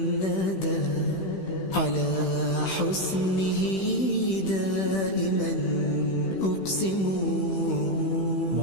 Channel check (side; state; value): right; late; 16 ms